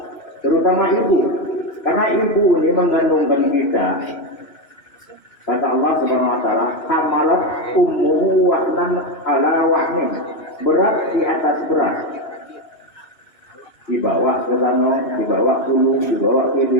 terutama ibu, karena ibu ini mengandungkan kita. Kata Allah Subhanahu wa taala, "Hamalat ummuhu wahnan ala wahnin." Berat di atas berat. Dibawa ke sana, dibawa dulu, dibawa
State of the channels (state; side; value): late; right; 2.7 ms